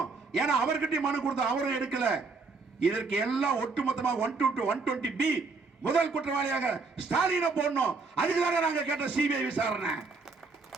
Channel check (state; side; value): quieter; left; 4.1 dB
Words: ஏன்னா அவர்கிட்ட மனு கொடுத்தோம், அவரும் எடுக்கல. இதற்கு எல்லாம் ஒட்டுமொத்தமாக 120B முதல் குற்றவாளியாக ஸ்டாலினை போடணும். அதுக்குதாங்க நாங்க கேட்ட சிபிஐ விசாரணை.